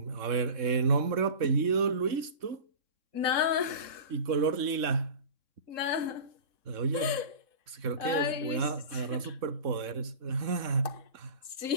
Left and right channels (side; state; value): left; late; 3.6 ms